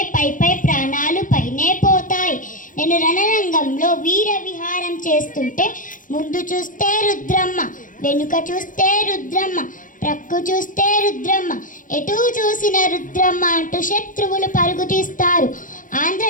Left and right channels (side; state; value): right; late; 0.38 ms